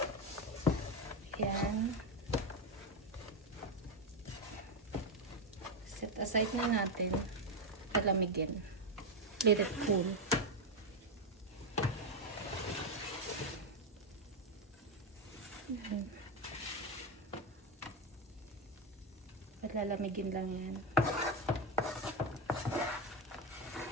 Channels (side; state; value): both; normal; correlation 0.09